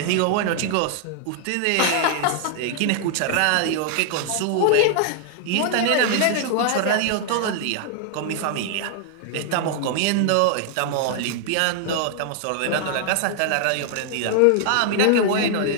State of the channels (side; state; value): both; different; correlation 0.00